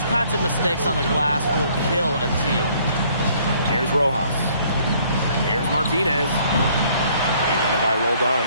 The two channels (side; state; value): both; inverted; correlation -0.61